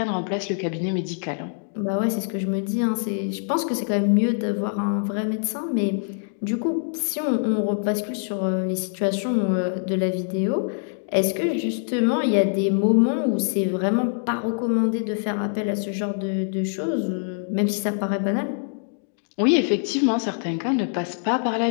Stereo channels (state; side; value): silent; right; digital silence